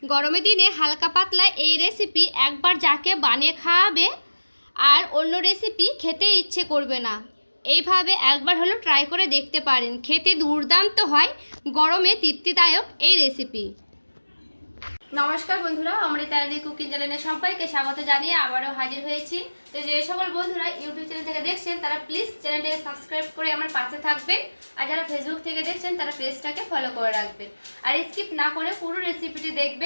গরমের দিনে হালকা পাতলা এই রেসিপি একবার যাকে বানিয়ে খাওয়াবে আর অন্য রেসিপি খেতে ইচ্ছে করবে না। এইভাবে একবার হলো ট্রাই করে দেখতে পারেন, খেতে দুর্দান্ত হয়, গরমে তৃপ্তিদায়ক এই রেসিপি। নমস্কার বন্ধুরা, অমৃতা কুকিং চ্যানেলে সবাইকে স্বাগত জানিয়ে আবারও হাজির হয়েছি। তো যে সকল বন্ধুরা ইউটিউব চ্যানেল থেকে দেখছেন তারা প্লিজ চ্যানেলটাকে সাবস্ক্রাইব করে আমার পাশে থাকবেন, আর যারা ফেসবুক থেকে দেখছেন তারা পেজটাকে ফলো করে রাখবেন, আর স্কিপ না করে পুরো রেসিপিটি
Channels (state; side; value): inverted; both; correlation -1.00